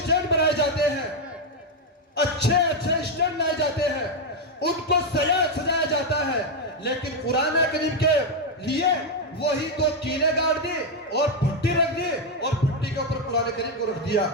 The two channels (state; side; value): normal; both; correlation 0.03